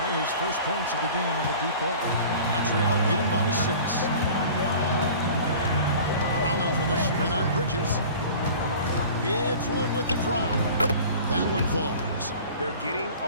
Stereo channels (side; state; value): both; inverted; correlation -0.43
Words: His first points of the game on the deep ball. Montreal leading by 6. Rollins with a screen on Bridges. It's Wood with the drop. That one falls. They're getting